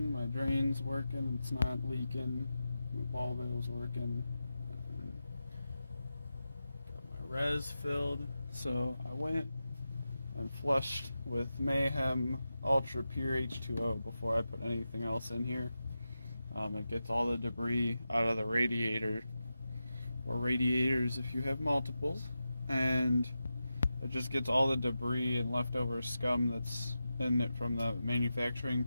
my drain's working, it's not leaking, my ball valve's working, got my res filled, so I went and flushed with Mayhem Ultra Pure H2O before I put anything else in here. It gets all the debris out of the radiator, or radiators if you have multiples, and it just gets all the debris and leftover scum that's in it from the manufacturing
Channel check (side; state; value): both; inverted; correlation -0.91